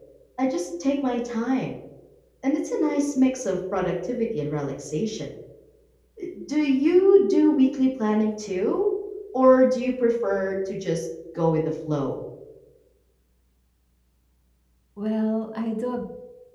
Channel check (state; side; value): identical; both; correlation 1.00